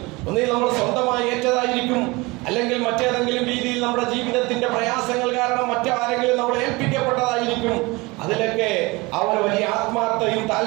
ഒന്നിൽ നമ്മൾ സ്വന്തമായി ഏറ്റതായിരിക്കും, അല്ലെങ്കിൽ മറ്റേതെങ്കിലും രീതിയിൽ നമ്മുടെ ജീവിതത്തിന്റെ പ്രയാസങ്ങൾ കാരണം മറ്റാരെങ്കിലും നമ്മൾ ഏൽപ്പിക്കപ്പെട്ടതായിരിക്കും. അതിലൊക്കെ അവർ വലിയ ആത്മാർത്ഥയും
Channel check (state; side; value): quieter; left; 24.0 dB